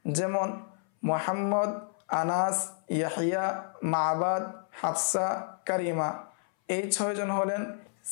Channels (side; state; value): right; silent; 58 dB below the other